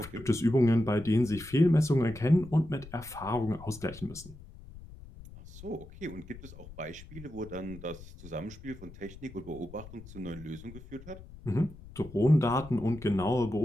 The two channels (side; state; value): left; noise; rumble, 17 dB below the sound